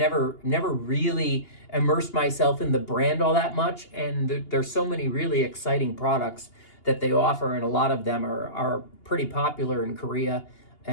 really immersed myself in the brand all that much, and there's so many really exciting products that they offer, and a lot of them are pretty popular in Korea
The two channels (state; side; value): late; right; 2.8 ms